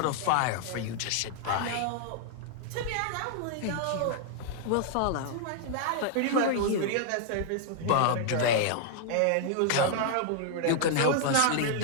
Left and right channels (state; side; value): different; both; correlation 0.00